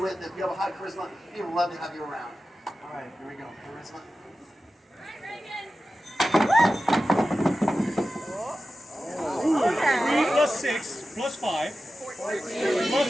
If you have a high charisma, people love to have you around. All right, here we go. Charisma. 3 plus 6 plus 5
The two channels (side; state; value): both; normal; correlation 0.93